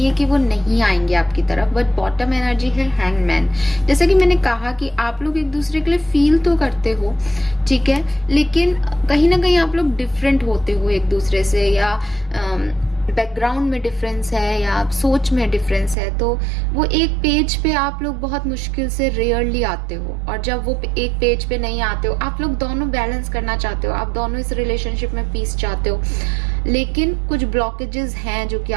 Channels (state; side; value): drops out; left; at 16.0 s